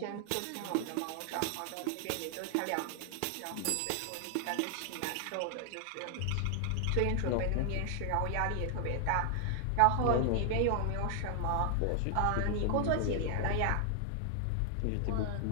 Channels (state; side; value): different; both; correlation 0.00